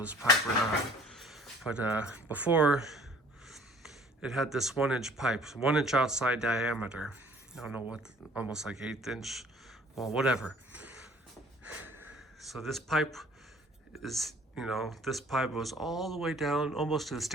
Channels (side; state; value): both; normal; correlation 0.53